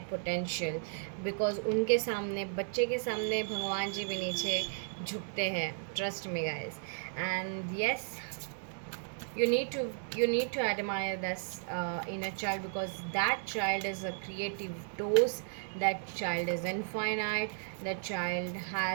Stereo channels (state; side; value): silent; left; digital silence